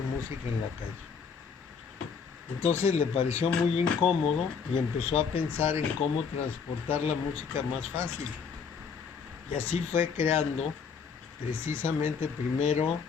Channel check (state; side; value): quieter; right; 6.0 dB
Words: música en la calle. Entonces le pareció muy incómodo y empezó a pensar en cómo transportar la música más fácil. Y así fue creando precisamente primero